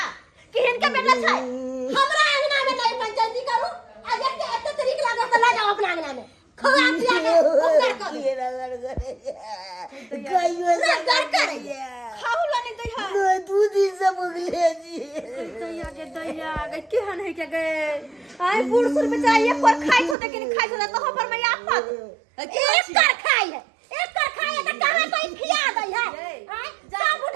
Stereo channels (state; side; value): drops out; left; at 20.2 s